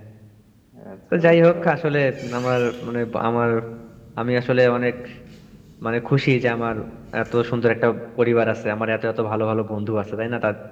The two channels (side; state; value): both; identical; correlation 1.00